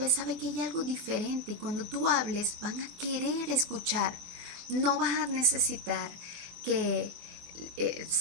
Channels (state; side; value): late; left; 24 ms